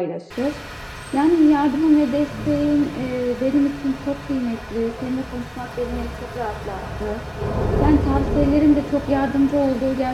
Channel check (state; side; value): identical; both; correlation 1.00